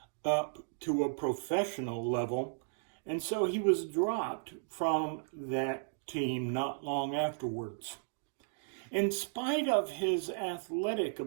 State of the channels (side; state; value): left; silent; digital silence